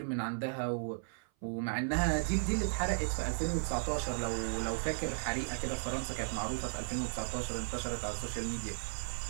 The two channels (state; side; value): silent; left; 54 dB below the other